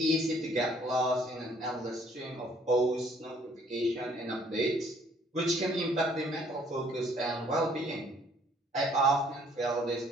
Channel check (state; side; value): normal; both; correlation 0.61